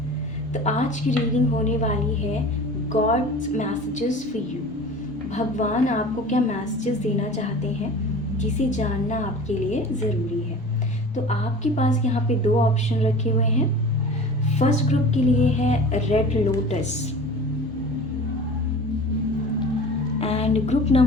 तो आज की रीडिंग होने वाली है गॉड्स मैसेजेस फॉर यू। भगवान आपको क्या मैसेजेस देना चाहते हैं जिसे जानना आपके लिए ज़रूरी है। तो आपके पास यहाँ पे दो ऑप्शन रखे हुए हैं। फर्स्ट ग्रुप के लिए है red lotus and group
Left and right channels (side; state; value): both; normal; correlation 0.39